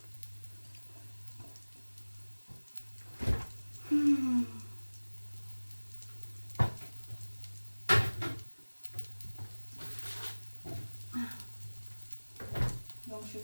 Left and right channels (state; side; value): inverted; both; correlation -1.00